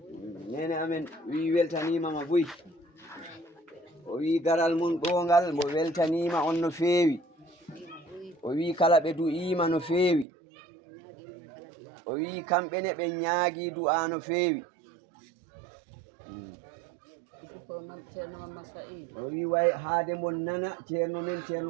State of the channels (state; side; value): drops out; left; at 10.2 s